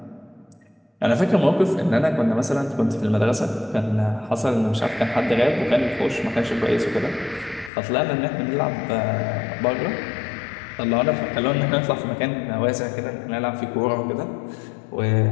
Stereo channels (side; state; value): right; drops out; at 7.7 s